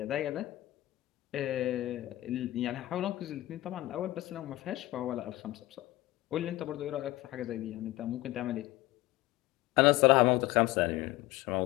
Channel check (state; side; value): quieter; right; 17.4 dB